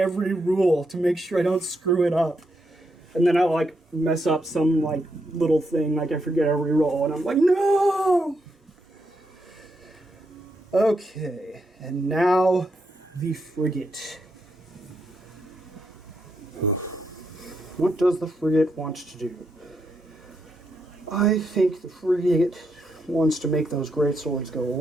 rule to make sure I don't screw it up. And then I mess up some little thing, I forget every roll, and I'm like, no! Okay, and now the frigate. What does the frigate want to do? I think the frigate wants to make those great swords go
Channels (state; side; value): normal; both; correlation 0.81